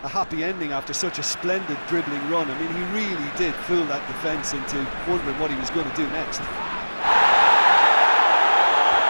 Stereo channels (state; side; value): inverted; both; correlation -1.00